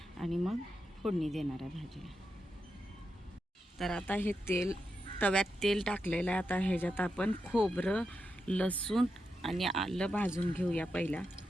आणि मग फोडणी देणार आहे भाजीला. तर आता हे तव्यात तेल टाकलेलं आहे. आता ह्याच्यात आपण खोबरं लसूण आणि आलं भाजून घेऊया पहिला.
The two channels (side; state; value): both; normal; correlation 0.86